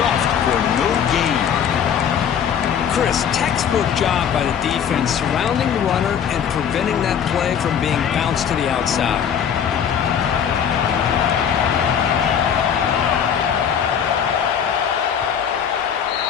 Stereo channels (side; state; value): right; quieter; 8.1 dB